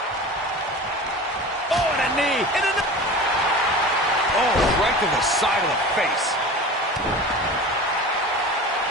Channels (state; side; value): normal; both; correlation 0.35